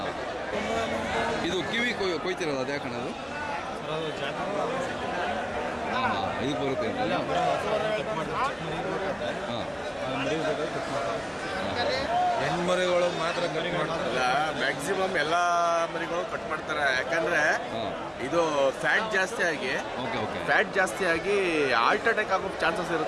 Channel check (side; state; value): both; identical; correlation 1.00